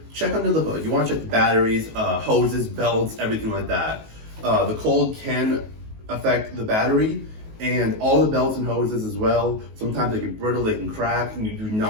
check under the hood. You want to check the batteries, hoses, belts, everything like that. The cold can affect the battery and all the belts and hoses as well. Sometimes they get brittle, they can crack, and you do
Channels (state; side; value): late; left; 19 ms